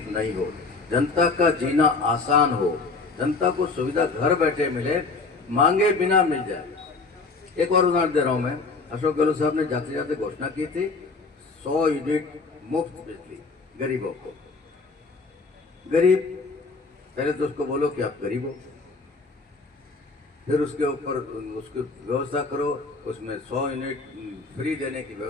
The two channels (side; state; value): right; quieter; 4.0 dB